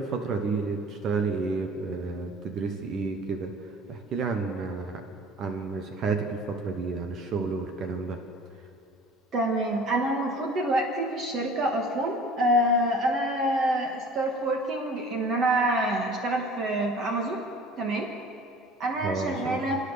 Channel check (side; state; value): both; normal; correlation 0.46